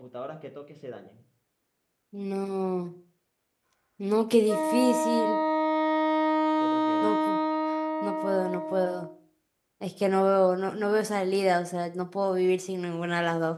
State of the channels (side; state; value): both; identical; correlation 1.00